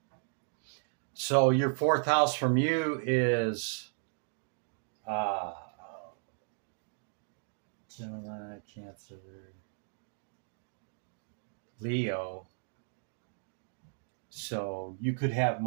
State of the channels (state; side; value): silent; left; 55 dB below the other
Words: So your fourth house from you is Gemini, Cancer, Leo. So you could have